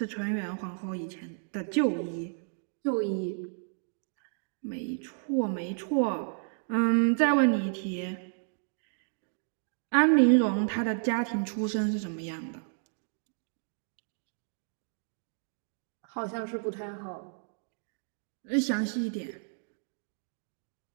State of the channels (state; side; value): silent; left; digital silence